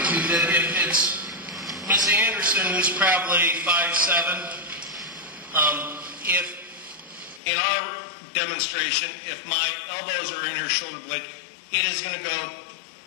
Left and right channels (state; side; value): drops out; right; at 7.4 s